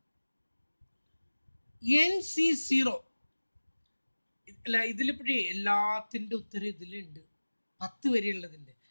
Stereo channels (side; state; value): both; inverted; correlation -1.00